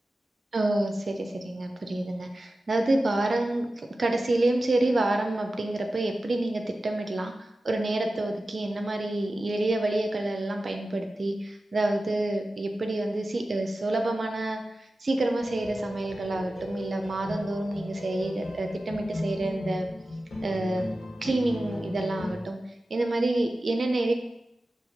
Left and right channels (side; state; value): both; normal; correlation 0.94